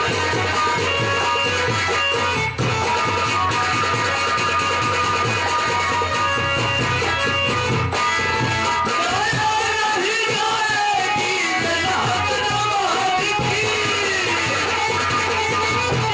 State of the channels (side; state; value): both; identical; correlation 1.00